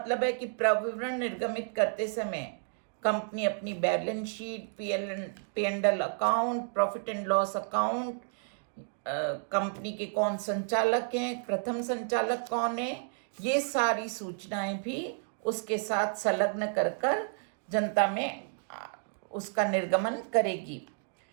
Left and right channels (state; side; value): silent; left; 57 dB below the other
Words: है कि प्रविवरण निर्गमित करते समय कंपनी अपनी balance sheet, P&L account, profit and loss account, company के कौन संचालक हैं, प्रथम संचालक कौन है, ये सारी सूचनाएं भी उसके साथ संलग्न कर जनता में उसका निर्गमन करेगी।